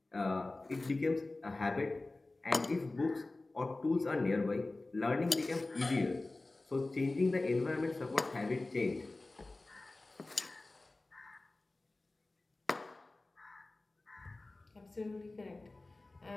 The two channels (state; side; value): quieter; right; 3.1 dB